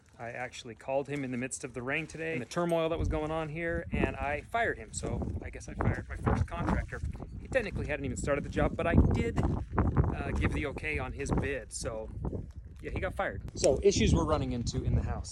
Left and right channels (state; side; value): identical; both; correlation 1.00